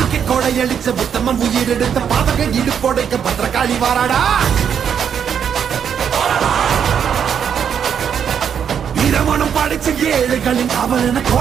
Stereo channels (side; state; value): left; quieter; 8.0 dB